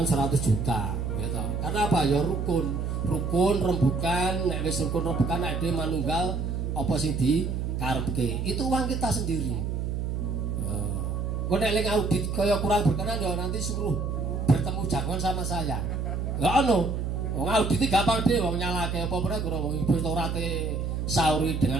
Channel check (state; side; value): noise; right; hum, 2 dB below the sound